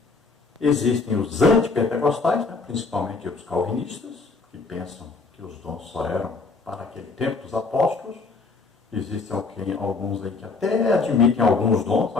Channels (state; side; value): quieter; right; 4.1 dB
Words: Existem os antipentecostais, né? Principalmente os calvinistas, que pensam que os dons só eram para aquele tempo dos apóstolos. Existem alguns aí que até admitem alguns dons,